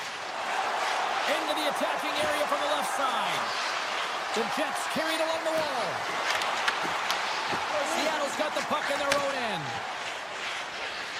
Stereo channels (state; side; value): identical; both; correlation 1.00